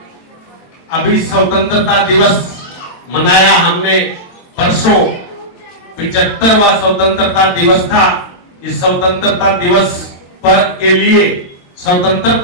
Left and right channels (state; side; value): late; right; 23 ms